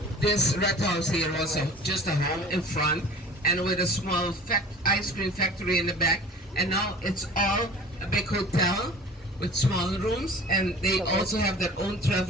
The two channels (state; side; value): normal; both; correlation 0.43